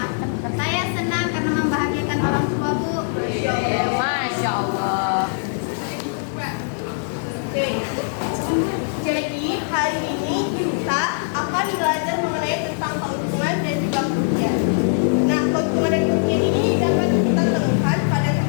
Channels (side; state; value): right; silent; digital silence